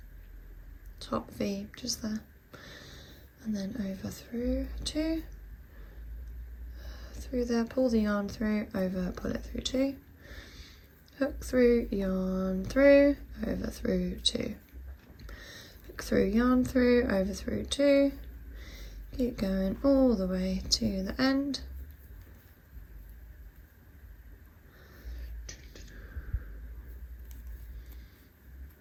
V just there, and then over through 2, through there, pull the yarn through, over, pull it through 2, hook through, yarn through, over through 2, hook through, yarn through, over through 2, keep going all the way to the end.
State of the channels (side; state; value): both; identical; correlation 1.00